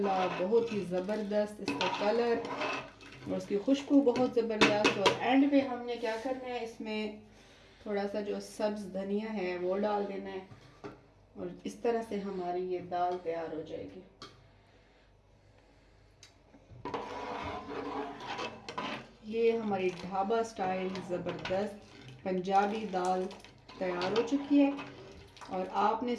बहुत ही ज़बरदस्त इसका कलर और उसकी खुशबू बहुत ज़बरदस्त। और एंड पे हमने क्या करना है, इसमें थोड़ा सा जो सब्ज़ धनिया है वो डाल देना है और इस तरह से हमारी ये दाल तैयार हो जाएगी। ये हमारी ढाबा स्टाइल ज़बरदस्त पंजाबी दाल तैयार हो चुकी है और आपने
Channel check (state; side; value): identical; both; correlation 1.00